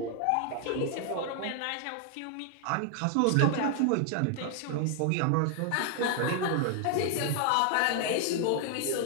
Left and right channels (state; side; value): different; both; correlation 0.00